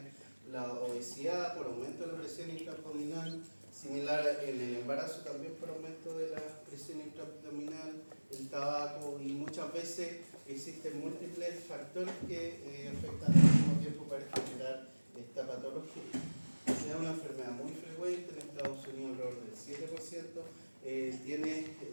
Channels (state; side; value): inverted; both; correlation -1.00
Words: la obesidad por aumento de la presión intraabdominal, similar en el embarazo también por aumento de la presión intraabdominal, el tabaco, y muchas veces existen múltiples factores que afectan al mismo tiempo para generar esta patología. Es una enfermedad muy frecuente en Estados Unidos, alrededor del 7%. Tiene